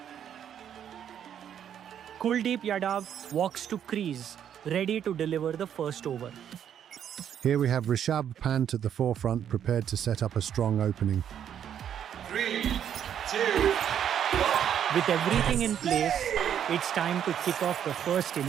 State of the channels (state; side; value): quieter; left; 9.3 dB